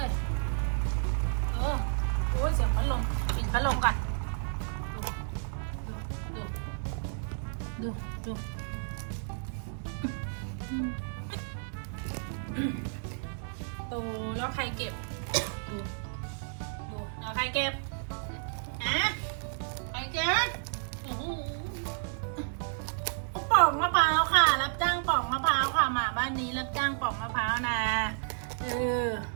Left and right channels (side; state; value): left; silent; digital silence